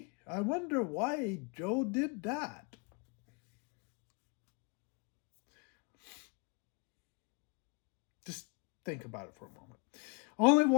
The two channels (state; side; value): quieter; right; 33.3 dB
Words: I wonder why Joe did that. Just think about it for a moment. Only